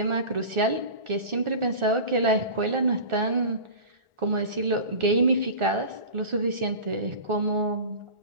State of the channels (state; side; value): late; left; 1.4 ms